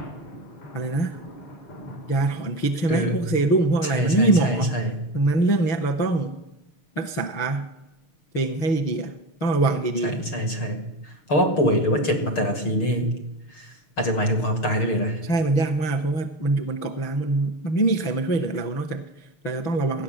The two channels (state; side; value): late; right; 6.5 ms